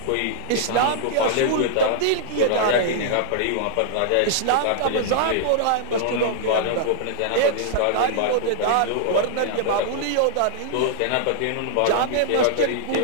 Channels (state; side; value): different; both; correlation -0.01